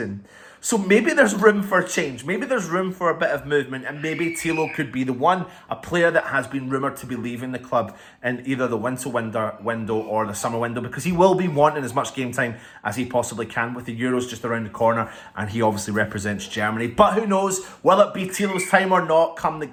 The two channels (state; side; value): identical; both; correlation 1.00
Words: So maybe there's room for change. Maybe there's room for a bit of movement, and maybe Tilo could be the one, a player that has been rumoured to be leaving the club in either the winter window or the summer window, because he will be wanting as much game time as he possibly can with the Euros just around the corner, and he obviously represents Germany. But who knows, will it be Tilo's time or not come the